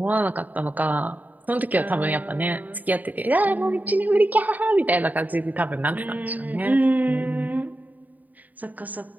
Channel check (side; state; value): left; late; 0.080 ms